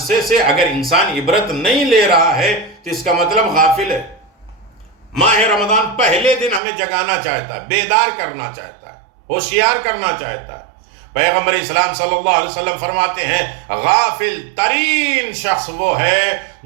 سے اگر انسان عبرت نہیں لے رہا ہے تو اس کا مطلب غافل ہے. ماہ رمضان پہلے دن ہمیں جگانا چاہتا ہے، بیدار کرنا چاہتا ہے، ہوشیار کرنا چاہتا ہے. پیغمبر اسلام صلی اللہ علیہ وسلم فرماتے ہیں غافل ترین شخص وہ ہے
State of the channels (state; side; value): drops out; left; at 6.6 s